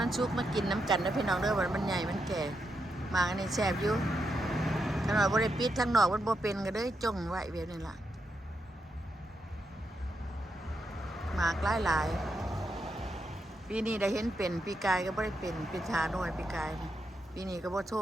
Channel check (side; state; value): both; normal; correlation 0.83